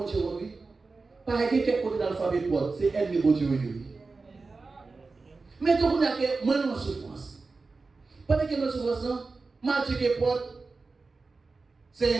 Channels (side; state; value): left; quieter; 4.0 dB